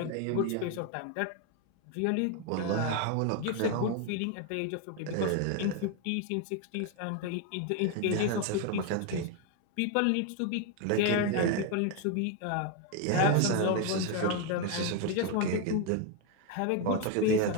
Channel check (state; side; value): different; both; correlation 0.01